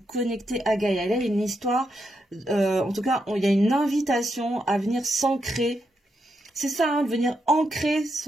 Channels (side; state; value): both; normal; correlation 0.82